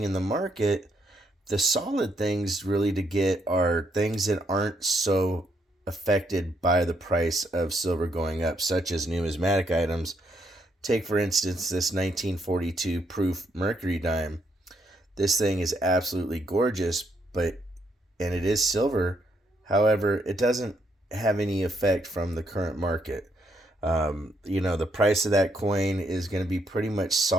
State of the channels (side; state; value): both; normal; correlation 0.75